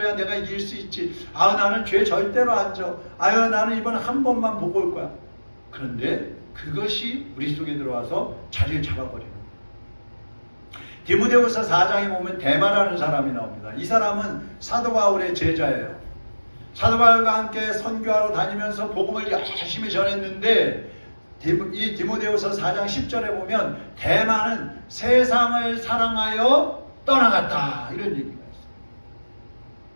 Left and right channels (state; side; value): inverted; both; correlation -1.00